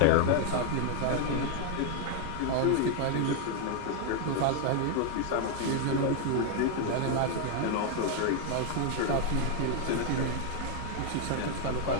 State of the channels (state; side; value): different; both; correlation 0.00